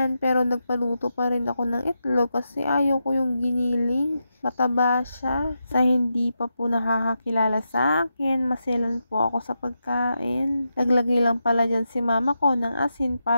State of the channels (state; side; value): inverted; both; correlation -0.87